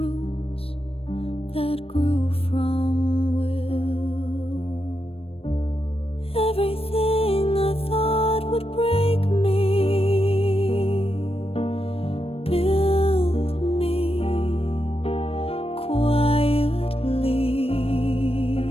that grew from will. Everything I thought would break me built me quietly.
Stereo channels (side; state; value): right; late; 0.28 ms